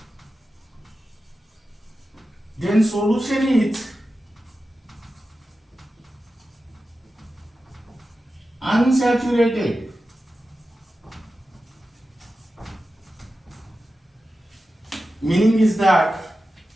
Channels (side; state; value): both; normal; correlation 0.93